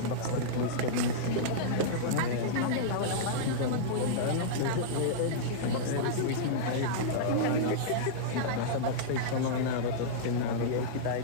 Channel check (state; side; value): different; both; correlation -0.04